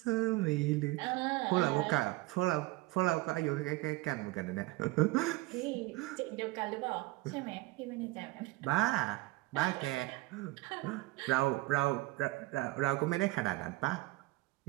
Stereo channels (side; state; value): left; quieter; 20.3 dB